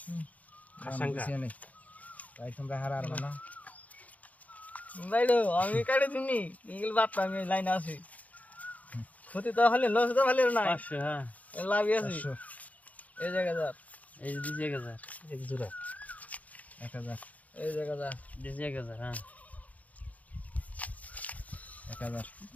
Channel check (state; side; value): late; right; 0.073 ms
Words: আশঙ্কা তাই তোমরা হারার না বাইলো আমি কাড়ি দিনি ইগল বাদ আমি লাইন আছি ক্ষতি তো হলে লস তো হলে না 500 হ্যাঁ লাভ আছে এই জায়গা যা এই যে জায়গা যা এক জোড়া 1000 এই জায়গা যা এই জায়গা যা হ্যাঁ 1000